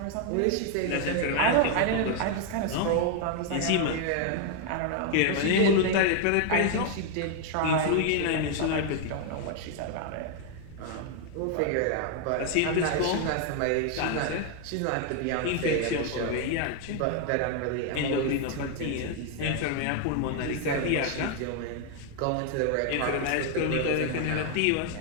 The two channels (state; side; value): different; both; correlation 0.00